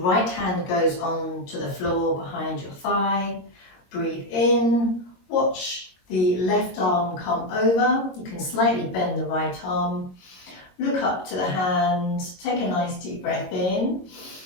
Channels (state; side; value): late; right; 22 ms